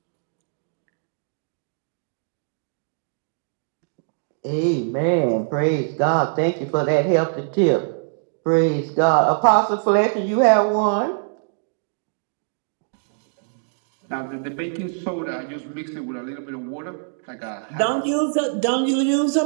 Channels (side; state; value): left; silent; digital silence